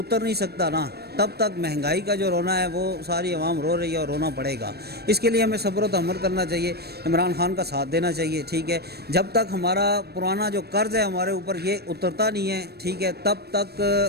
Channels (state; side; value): late; left; 0.47 ms